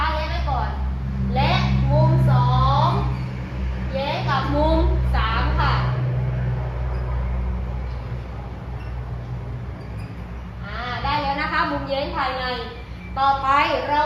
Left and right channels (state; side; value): identical; both; correlation 1.00